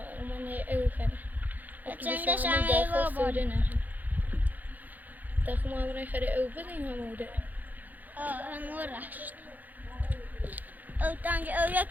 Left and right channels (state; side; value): late; left; 0.083 ms